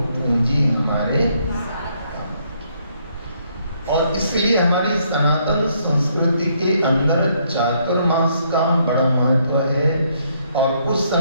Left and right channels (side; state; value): both; inverted; correlation -0.71